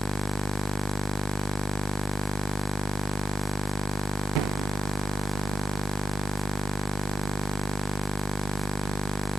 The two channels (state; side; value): normal; both; correlation 0.91